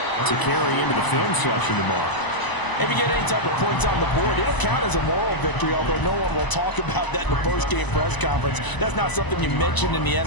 to carry into the film session tomorrow. If you get any type of points on the board, it'll count as a moral victory, although no one will talk about that in the post-game press conference. That's not something you mention in the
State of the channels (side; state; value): right; late; 1.0 ms